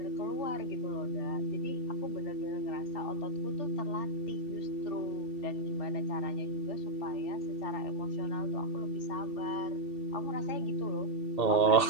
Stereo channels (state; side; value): late; right; 2.7 ms